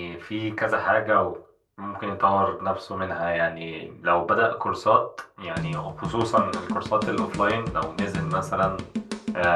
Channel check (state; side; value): identical; both; correlation 1.00